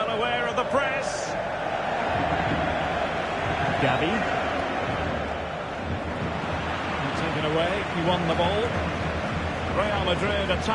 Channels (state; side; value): identical; both; correlation 1.00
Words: aware of the press. Gavi. Taken away, he won the ball. Real Madrid